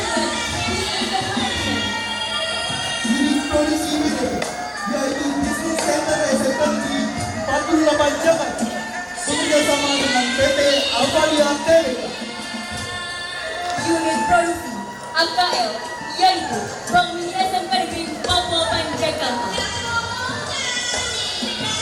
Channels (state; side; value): identical; both; correlation 1.00